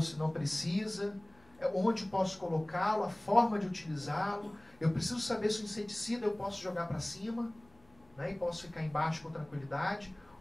não precisa, onde posso colocá-lo, a forma de utilizá-lo. Eu preciso saber se o inseticida eu posso jogar para cima, né, e posso ficar embaixo com tranquilidade,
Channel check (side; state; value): left; noise; hum, 29 dB below the sound